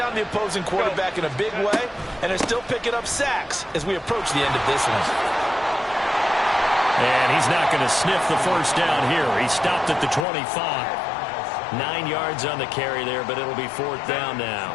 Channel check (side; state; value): right; drops out; at 10.2 s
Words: the opposing quarterback in a big way, and they're still picking up sacks as we approach the end of this one. And he's not going to sniff the first down here. He stopped at the 25. 9 yards on the carry there, but it'll be 4th down now.